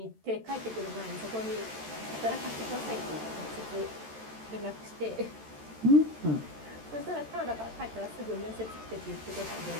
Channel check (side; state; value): left; late; 13 ms